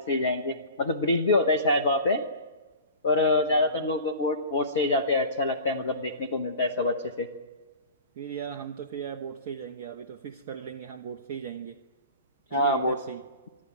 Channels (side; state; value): both; inverted; correlation -0.38